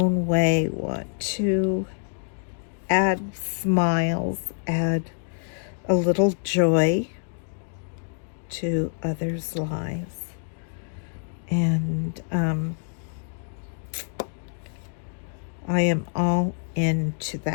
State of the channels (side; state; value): right; silent; digital silence